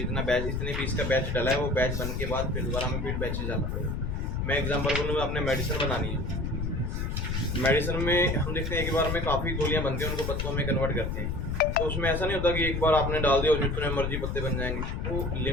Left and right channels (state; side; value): noise; left; rumble, 2 dB below the sound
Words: बैच, इतने पीस का बैच डाला है, वो बैच बनने के बाद फिर दोबारा हमें फिर बैचेस डालना पड़ेगा। मैं एग्जांपल बोलूँगा, आपने मेडिसिन बनानी है, मेडिसिन में हम देखते हैं एक बार में काफ़ी गोलियाँ बनती हैं, उनको पत्तों में कन्वर्ट करते हैं। तो उसमें ऐसा नहीं होता कि एक बार आपने डाल दिया और जितने मर्जी पत्ते बन जाएंगे। वो